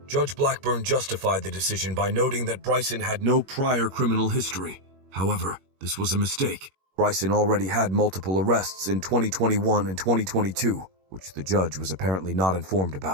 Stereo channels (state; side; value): late; left; 21 ms